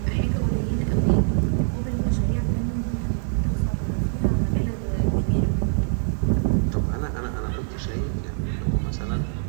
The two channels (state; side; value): silent; left; 62 dB below the other